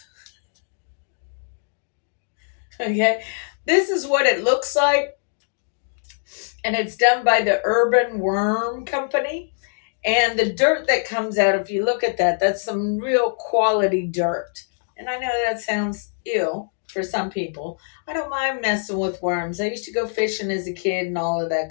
Okay, this is what it looks like, and it's done by the Urban Worm Company. And the dirt that comes out, if you look at that, that's some real quality dirt. And I know that sounds ill for some people. I don't mind messing with worms. I used to go fishing as a kid and all of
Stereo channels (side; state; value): right; silent; digital silence